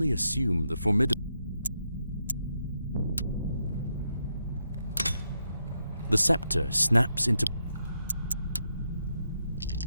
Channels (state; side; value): inverted; both; correlation -0.81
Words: assume the formidable... The scepter snaps into...